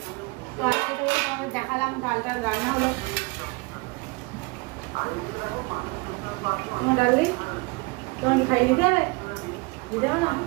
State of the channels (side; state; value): left; quieter; 26.8 dB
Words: তো আজকে তো তোমাদের দেখালাম ডালটা রান্না হলো। তোমার ডালি তোমার কি খাইয়ে দিতে হবে? দিতে হবে না?